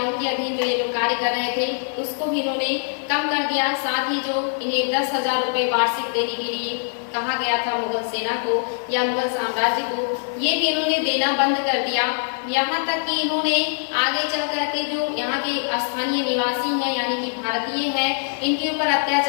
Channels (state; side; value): silent; right; digital silence